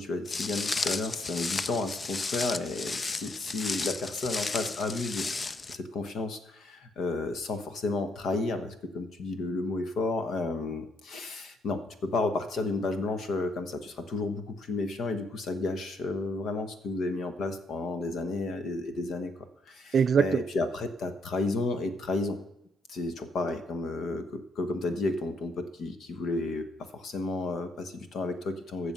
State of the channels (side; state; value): both; normal; correlation 0.71